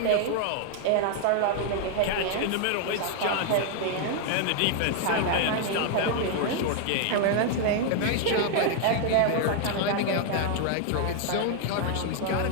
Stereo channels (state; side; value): different; both; correlation 0.00